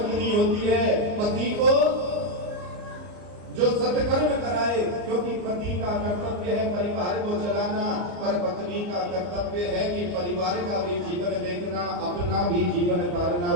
होती है। पति को जो सत्कर्म कराए, क्योंकि पति का कर्तव्य है परिवार को चलाना, पर पत्नी का कर्तव्य है कि परिवार का भी जीवन देखना, अपना भी जीवन तारना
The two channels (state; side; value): late; left; 34 ms